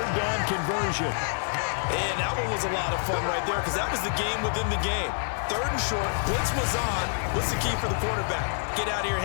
down conversion. And that one was a lot of fun right there because that was the game within the game. 3rd and short, blitz was on. What's the key for the quarterback? Get out of your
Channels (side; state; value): right; silent; digital silence